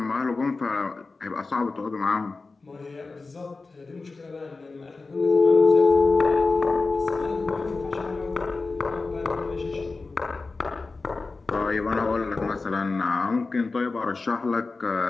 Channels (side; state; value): right; quieter; 3.8 dB